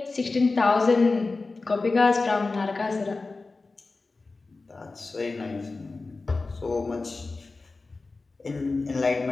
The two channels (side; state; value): right; quieter; 3.7 dB